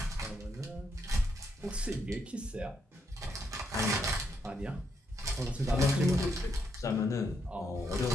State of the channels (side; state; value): both; normal; correlation 0.77